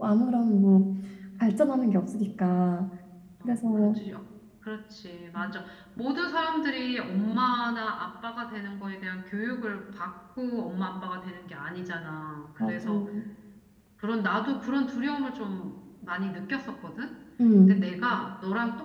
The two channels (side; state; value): both; identical; correlation 1.00